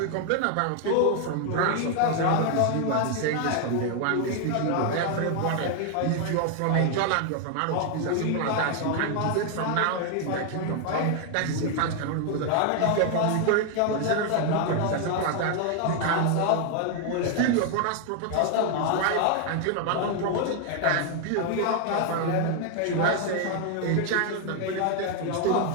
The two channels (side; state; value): both; different; correlation 0.00